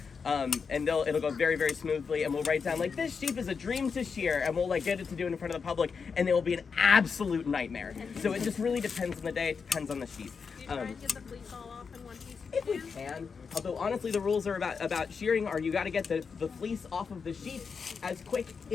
And it'll go very, very smoothly, and we'll write down like, this sheep is a dream to shear, and we'll like get it to do it in front of the public, and it will be an absolute nightmare. So it just really depends on the day. It depends on the sheep. Do you try and get the fleece all off in one piece? If we can. Although honestly, the rules are about shearing are you got to get the fleece off of the sheep as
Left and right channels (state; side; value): quieter; right; 5.6 dB